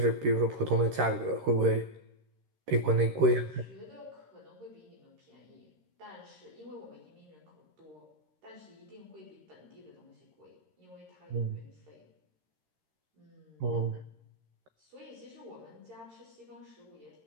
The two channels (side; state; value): left; late; 13 ms